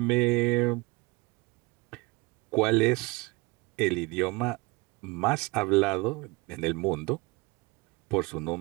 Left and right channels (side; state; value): left; quieter; 25.7 dB